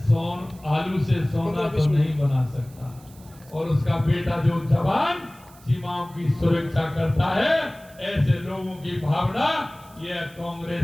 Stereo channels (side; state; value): right; noise; hiss, 25 dB below the sound